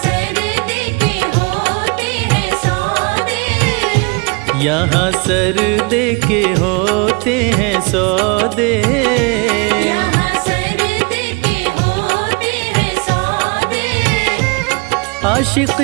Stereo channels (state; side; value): quieter; left; 30.3 dB